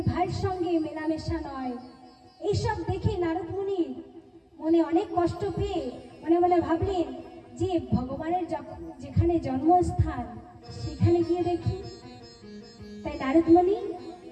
ভাইয়ের সঙ্গে মেলামেশা নয়। এইসব দেখে নারদ মুনি মনে অনেক কষ্ট পেয়ে মনে মনে ভাবলেন যে ভগবানের যেখানে জন্মস্থান সেখানে গিয়ে দেখি। তাই নারদ মুনি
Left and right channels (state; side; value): identical; both; correlation 1.00